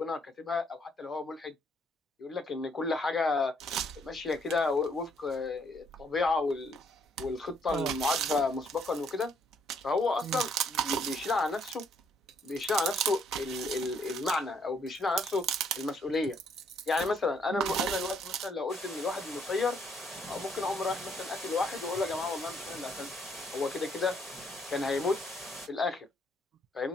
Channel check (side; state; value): both; normal; correlation 0.69